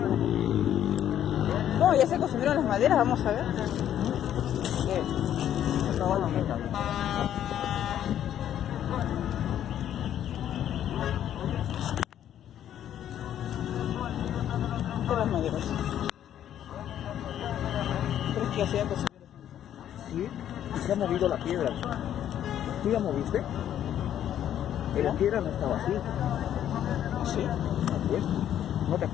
No, ya se consumieron las maderas, vamos a ver. Las maderas. ¿Crees que hacían consumir? Sí, y se ha movido la piedra. ¿Tú la moviste? La piedra no estaba así. Sí. Pues, ¿no te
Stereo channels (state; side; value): quieter; right; 10.7 dB